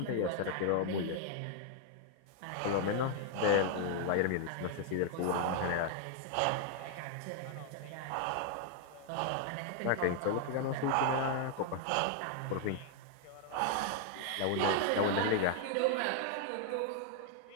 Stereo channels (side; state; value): both; different; correlation 0.00